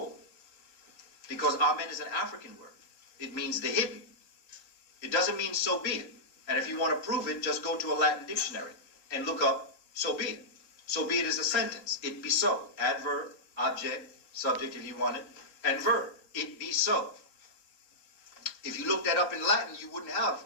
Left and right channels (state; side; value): late; right; 4.1 ms